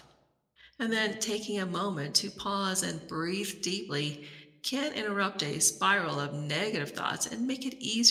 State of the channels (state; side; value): identical; both; correlation 1.00